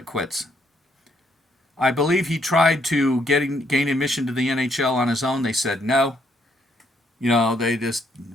quits. I believe he tried to gain admission to the NHL on his own. They said no. They just,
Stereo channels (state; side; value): normal; both; correlation 0.71